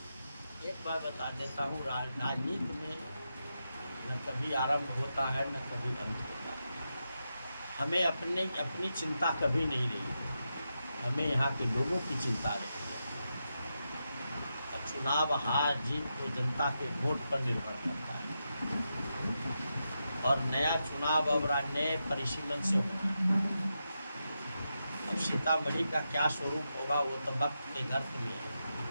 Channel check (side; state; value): both; inverted; correlation -0.87